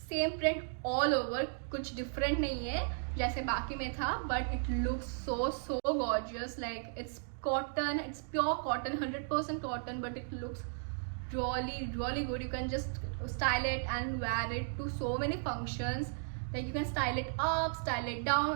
same print all over. कुछ different नहीं है जैसे बाकी में था but it looks so gorgeous. Like it's cotton, it's pure cotton, 100% cotton but it looks really good. You can just style it and wear it to so many functions. Like you can style it up, style it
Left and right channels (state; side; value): silent; left; digital silence